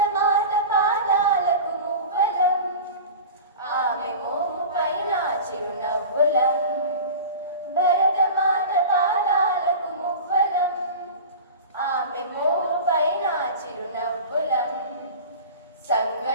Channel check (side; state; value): both; inverted; correlation -0.33